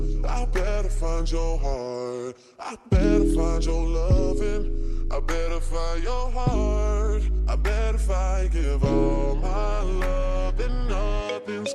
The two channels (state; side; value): identical; both; correlation 1.00